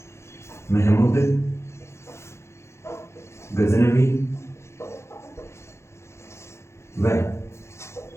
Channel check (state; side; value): late; right; 0.13 ms